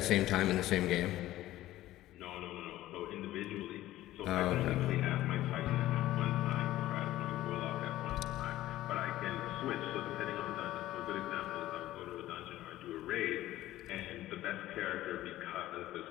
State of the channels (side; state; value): right; quieter; 15.1 dB